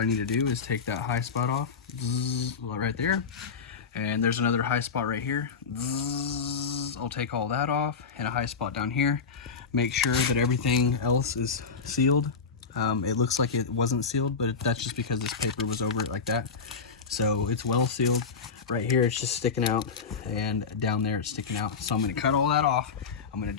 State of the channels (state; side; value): quieter; right; 5.4 dB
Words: need to do is take that high spot off, right there. And there's another high spot right here. I'll take all that off, and a high spot down here. Make sure that everything else is sealed. It looks like it wasn't sealed, but that's just because this paper was over it like that. So it's well sealed. Right here it's just sticking out, and down there it's sticking out. So I'm gonna cut all that off. I'm gonna